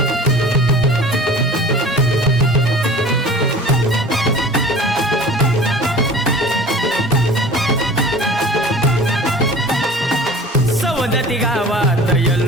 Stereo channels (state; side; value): normal; both; correlation 0.42